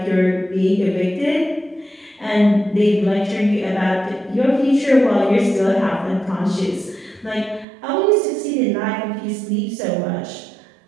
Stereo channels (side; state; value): left; drops out; at 7.7 s